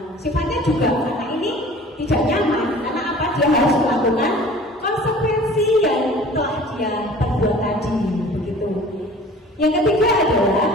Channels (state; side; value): normal; both; correlation 0.46